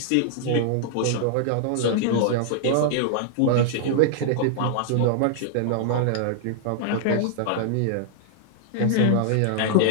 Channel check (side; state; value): both; different; correlation -0.01